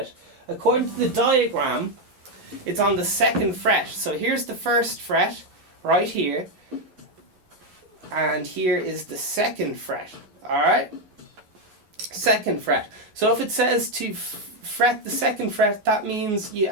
According to the diagram, it's on the 2nd fret. So here's the 1st fret, right here. And here is the 2nd fret, alright? 2nd fret. So if it says to fret the 2nd fret, that means you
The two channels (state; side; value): late; left; 11 ms